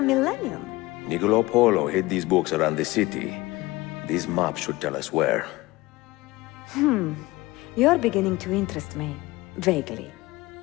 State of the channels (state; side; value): quieter; right; 20.3 dB